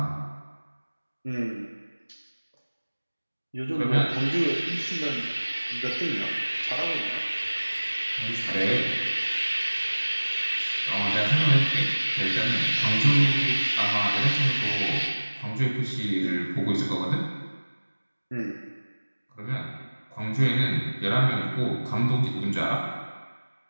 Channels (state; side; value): inverted; both; correlation -1.00